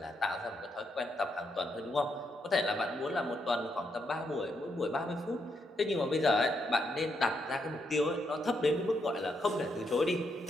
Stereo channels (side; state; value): both; normal; correlation 0.78